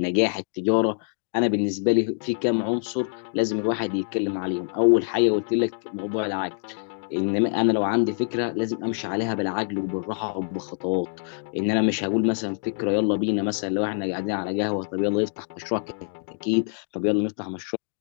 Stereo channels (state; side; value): silent; right; 62 dB below the other